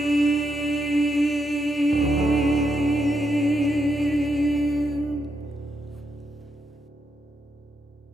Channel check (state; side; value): normal; both; correlation 0.80